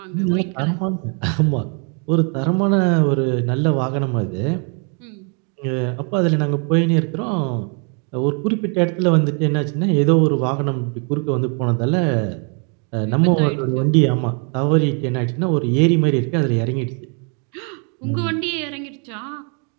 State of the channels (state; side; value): quieter; left; 38.6 dB